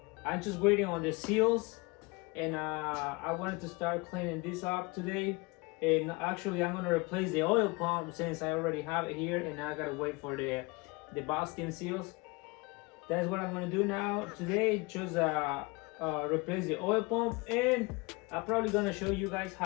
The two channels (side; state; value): right; quieter; 26.2 dB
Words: I'm just waiting on the seals, and I wanted to start cleaning this up today. And actually I'm going to replace the oil pump since I already have it here, and I gotta wait for the valve stem seals. That's what I'm going to do now today, just replace the oil pump, and I'm probably going to show you guys